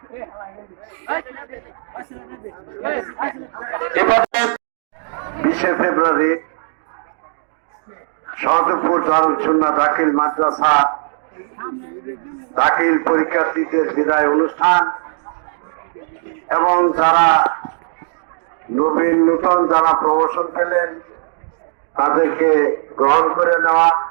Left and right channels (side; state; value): left; silent; digital silence